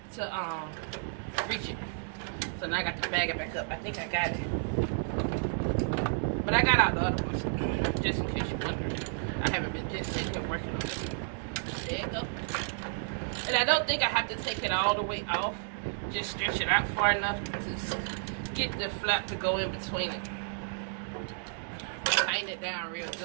to reach it. So now I got to bag it back up. I think I got it, but I got out the other ones just in case you wonder. I haven't been just sitting here working on it. There you go. And I don't think I have to take it all the way off. Just stretch it out far enough to get the flap to go in between it. But tighten it down real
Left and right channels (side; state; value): left; silent; digital silence